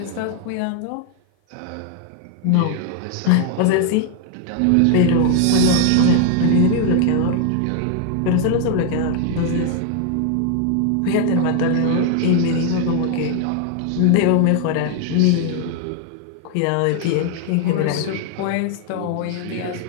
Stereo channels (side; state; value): both; different; correlation 0.00